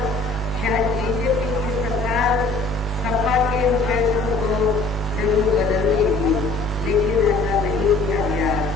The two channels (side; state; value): right; quieter; 3.5 dB